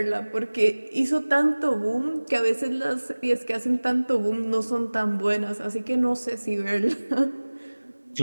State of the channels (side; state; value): both; inverted; correlation -1.00